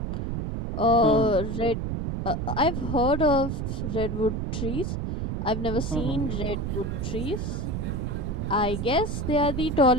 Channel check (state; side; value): noise; right; rumble, 2 dB below the sound